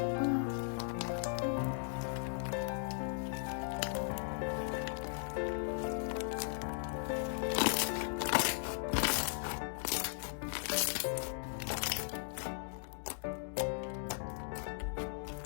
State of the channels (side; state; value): right; silent; digital silence